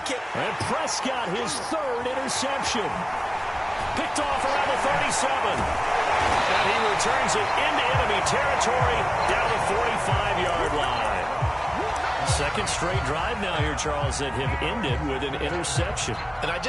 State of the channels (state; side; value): identical; both; correlation 1.00